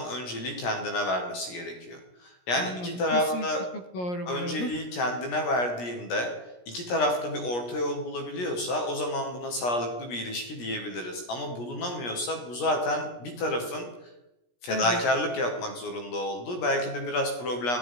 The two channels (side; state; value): right; late; 17 ms